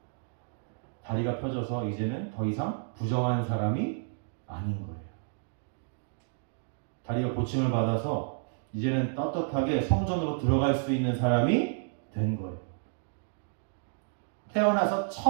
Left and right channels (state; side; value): silent; left; digital silence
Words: 다리가 펴져서 이제는 더 이상 부정한 사람이 아닌 거예요. 다리가 고침을 받아서 이제는 떳떳하게 성전으로 들어갈 수 있는 사람이 된 거예요. 태어나서